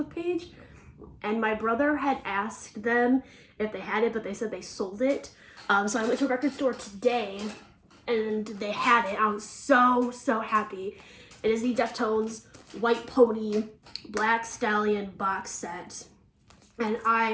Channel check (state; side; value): identical; both; correlation 1.00